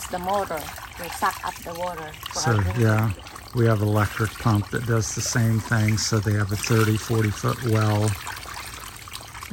the motor to suck up the water. So we have an electric pump that does the same thing. So they have a 30-40 foot well,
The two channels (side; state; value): both; identical; correlation 1.00